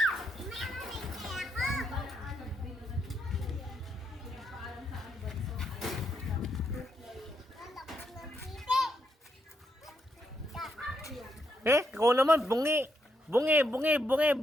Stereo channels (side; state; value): both; normal; correlation 0.79